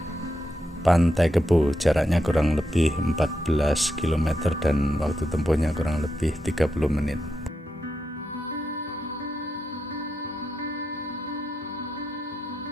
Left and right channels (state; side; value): normal; both; correlation 0.85